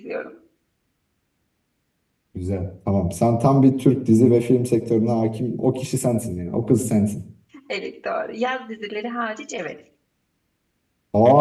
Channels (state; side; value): identical; both; correlation 1.00